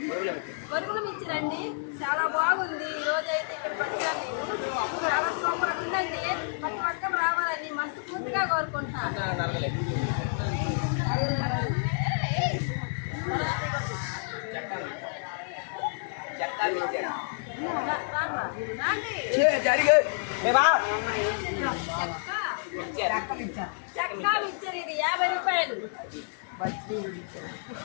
బరుగులు మిక్చర్ అండి, చాలా బాగుంది. ఈరోజు అయితే ఇక్కడికి వచ్చాను. చాలా సూపర్ ఉందండి. ప్రతి ఒక్కరు రావాలని మనస్ఫూర్తిగా కోరుకుంటున్నాను. చక్కా మిక్చర్ ఇది 50 రూపాయలు.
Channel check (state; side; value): silent; right; digital silence